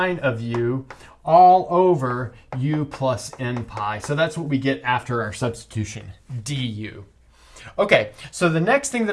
of u all over u plus n pi. So that's what we get after our substitution, du. Okay, so the next thing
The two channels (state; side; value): identical; both; correlation 1.00